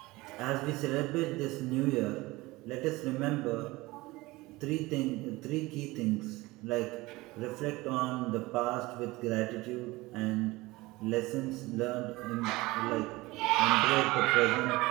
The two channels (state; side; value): quieter; left; 20.7 dB